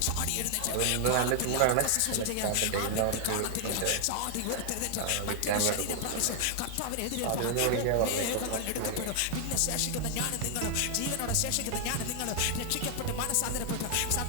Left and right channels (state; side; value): different; both; correlation 0.00